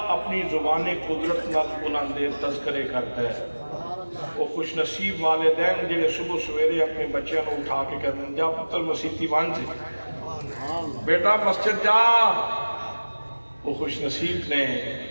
اپنی زبان قدرت نال انہوں دے تذکرے کرتا ہے۔ وہ خوش نصیب والدین جڑے صبح سویرے اپنے بچوں کو اٹھا کے کہتے ہیں جا پتر مسیتی بن جی، بیٹا مسجد جا۔ وہ خوش نصیب نے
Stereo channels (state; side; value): inverted; both; correlation -1.00